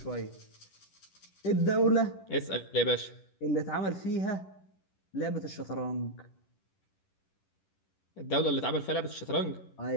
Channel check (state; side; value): late; right; 10 ms